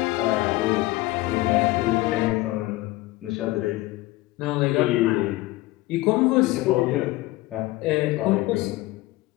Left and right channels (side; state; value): right; quieter; 18.8 dB